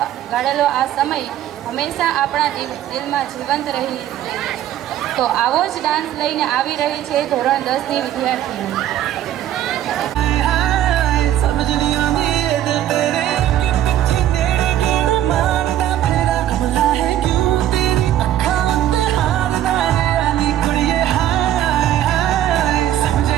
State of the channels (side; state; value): left; quieter; 12.0 dB